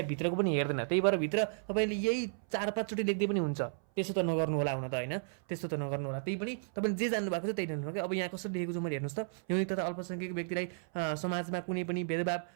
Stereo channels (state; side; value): silent; left; 55 dB below the other